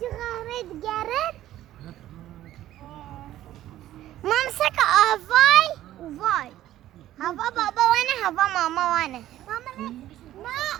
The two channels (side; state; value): left; quieter; 13.5 dB